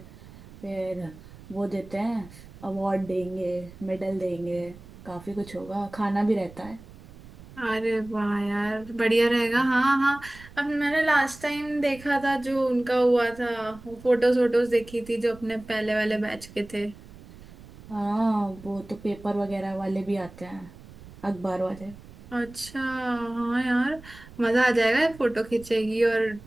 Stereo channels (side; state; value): right; noise; rumble, 19 dB below the sound